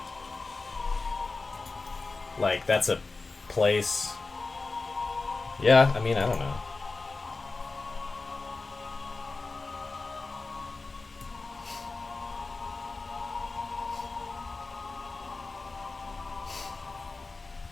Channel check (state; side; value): quieter; right; 3.8 dB